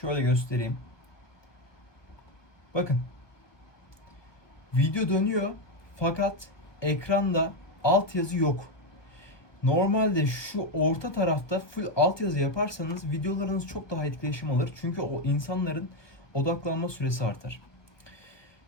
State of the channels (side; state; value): right; late; 1.2 ms